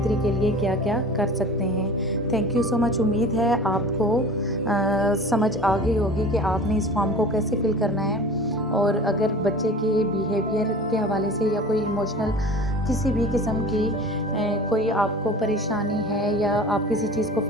के लिए क्या क्या कर सकते हैं। Thank you so much. उम्मीद है आपको समझ आ गई होगी कि आपने इस फॉर्म को कैसे फिल करना है। और अगर बच्चे के बिहेवियर के हवाले से या कोई इमोशनल किसी भी किस्म की कोई आपको परेशानी है या आप किसी चीज़ को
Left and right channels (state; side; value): normal; both; correlation 0.39